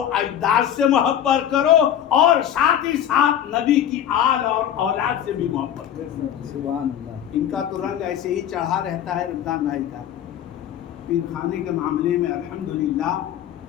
اجداد سے محبت کرو اور ساتھ ہی ساتھ نبی کی آل اور اولاد سے بھی محبت کرو. سبحان اللہ. ان کا تو رنگ ایسے ہی چڑھا رہتا ہے رمضان بھائی کا. پیر خانے کے معاملے میں الحمدللہ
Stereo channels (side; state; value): right; quieter; 10.1 dB